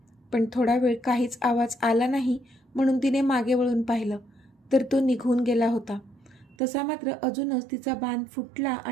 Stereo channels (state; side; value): drops out; left; at 6.6 s